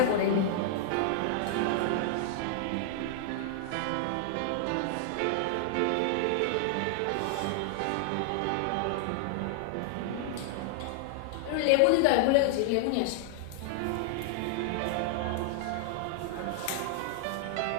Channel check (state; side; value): different; both; correlation 0.00